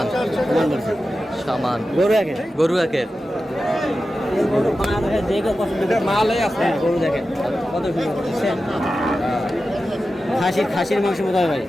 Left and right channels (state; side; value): normal; both; correlation 0.92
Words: বলছে। সামান বলছে। সামান গরু একের। গরু একের। গরু বাংলাদেশে যে কেউ পছন্দ করে। মালই আছে। গরু দেখেন কত সুন্দর দেখছেন? খাসির মাংসের মতো হবে ভাই।